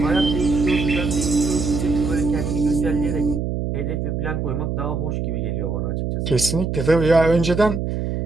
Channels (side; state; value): right; noise; hum, 2 dB below the sound